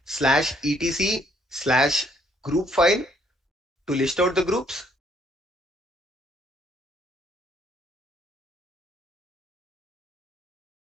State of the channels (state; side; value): normal; both; correlation 0.67